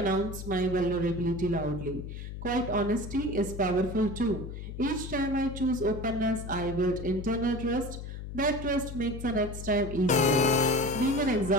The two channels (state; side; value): noise; left; hum, 9 dB below the sound